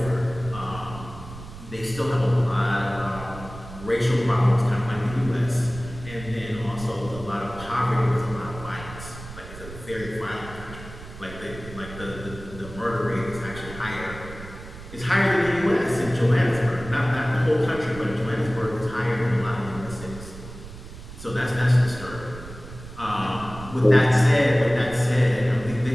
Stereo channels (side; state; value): right; noise; rumble, 14 dB below the sound